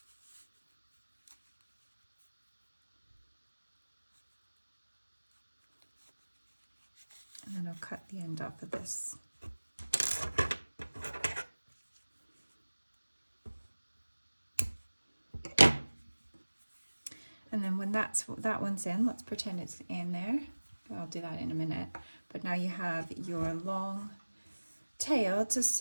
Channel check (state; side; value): inverted; both; correlation -1.00